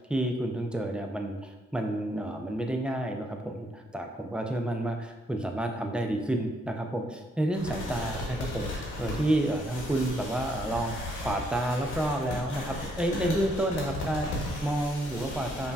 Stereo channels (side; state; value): both; normal; correlation 0.72